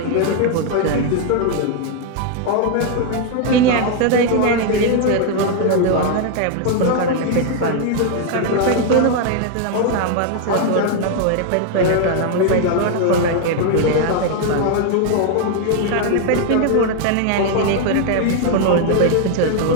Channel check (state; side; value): different; both; correlation 0.00